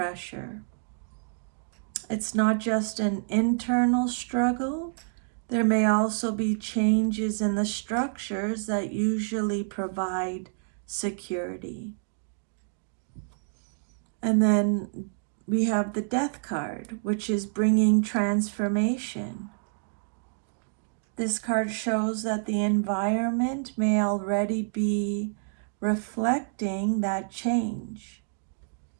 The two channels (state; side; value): silent; left; digital silence